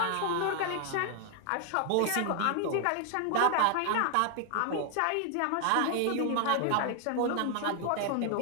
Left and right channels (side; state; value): both; different; correlation 0.00